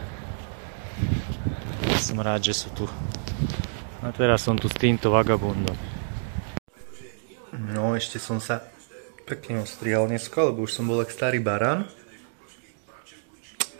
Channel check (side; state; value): left; silent; digital silence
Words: Som rád, že sú tu. A teraz som tu s týmto vagabundom. No, ešte som sa pekne ostrihal dneska, lebo už som bol jak starý barán.